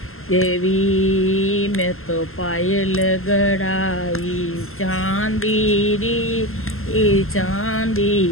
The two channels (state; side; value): late; right; 0.62 ms